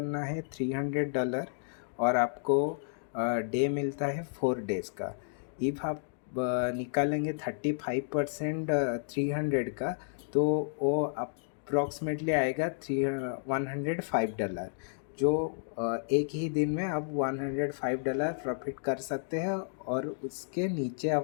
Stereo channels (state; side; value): silent; right; digital silence